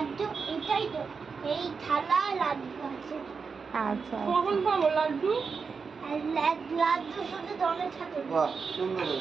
এটাই তো, এই থালা লাড্ডু আছে। আচ্ছা কখন পাবো লাড্ডু? আর লাড্ডু শুধু গণেশ ঠাকুর। বাহ সুন্দর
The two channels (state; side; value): quieter; left; 5.3 dB